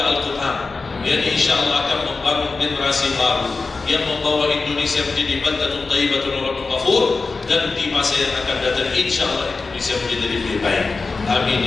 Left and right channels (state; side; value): quieter; right; 4.1 dB